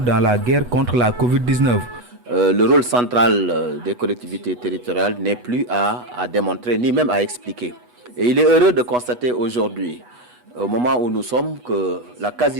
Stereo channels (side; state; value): left; late; 8.2 ms